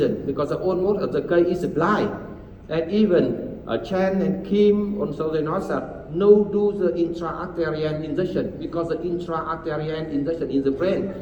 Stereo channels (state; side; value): identical; both; correlation 1.00